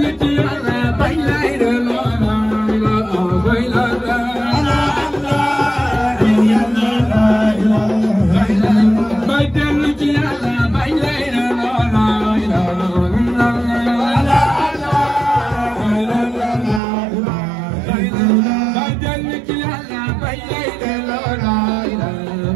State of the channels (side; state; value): left; drops out; at 16.8 s